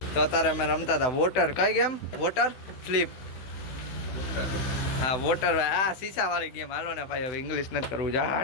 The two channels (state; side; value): late; right; 16 ms